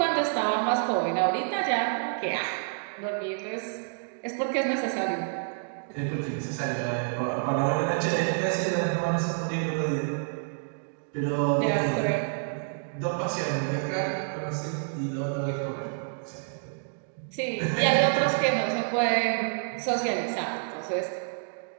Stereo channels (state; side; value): silent; left; digital silence